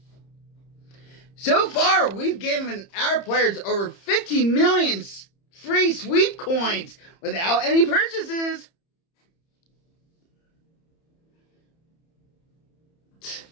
So far, we've given our players over 50 million free sweep coins without any purchases.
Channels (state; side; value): late; right; 30 ms